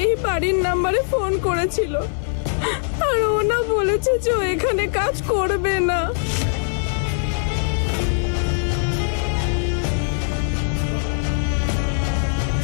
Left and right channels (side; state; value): right; silent; 56 dB below the other